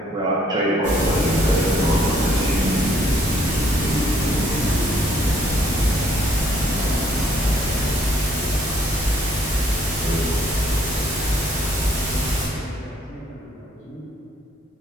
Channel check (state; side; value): normal; both; correlation 0.64